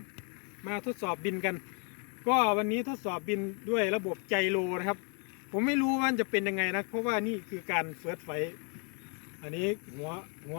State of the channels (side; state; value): right; quieter; 38.2 dB